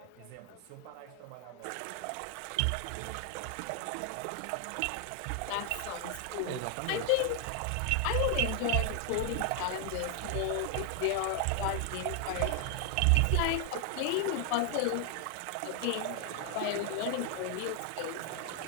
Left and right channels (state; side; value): different; both; correlation 0.00